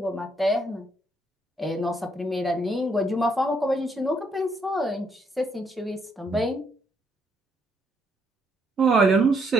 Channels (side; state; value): both; normal; correlation 0.72